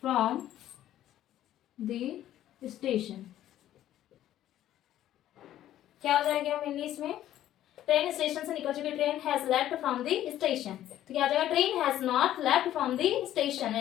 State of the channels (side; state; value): right; quieter; 12.6 dB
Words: from the station. क्या हो जाएगा मेनली इसमें? ट्रेन स्टेशन से निकल चुकी। Train has left from the station. तो क्या आ जाएगा? Train has not left from the station.